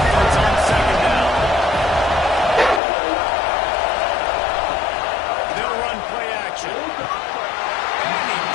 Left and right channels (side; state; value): right; drops out; at 2.8 s